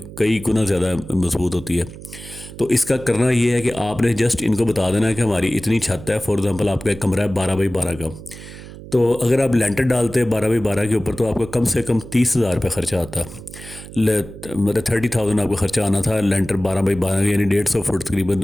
कई गुना ज़्यादा मजबूत होती है। तो इसका करना ये है कि आपने जस्ट इनको बता देना है कि हमारी इतनी छत है। फॉर एग्जांपल आपका एक कमरा है 12 बाई 12 का, तो अगर आप लेंटर डालते हैं 12 बाई 12 के ऊपर तो आपका कम से कम 30,000 रुपये खर्चा आता है। मतलब 30,000 आपका खर्चा आना था लेंटर 12 बाई 12 यानी 150 फुट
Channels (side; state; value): right; noise; hum, 15 dB below the sound